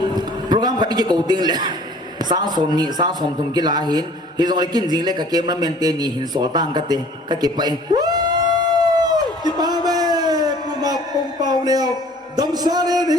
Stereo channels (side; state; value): both; normal; correlation 0.51